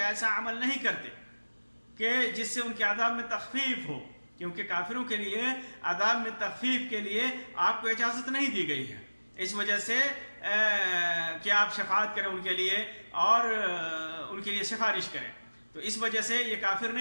ایسا عمل نہیں کرتے کہ جس سے ان کے عذاب میں تخفیف ہو، کیونکہ کافروں کے لیے عذاب میں تخفیف کے لیے آپ کو اجازت نہیں دی گئی ہے، اس وجہ سے کہ آپ شفاعت کریں ان کے لیے اور ان کے لیے سفارش کریں، تو اس وجہ سے یہ کافر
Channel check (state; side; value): inverted; both; correlation -1.00